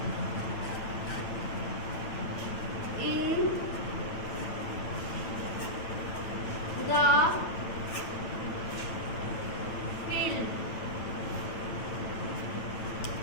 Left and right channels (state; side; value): late; right; 9.0 ms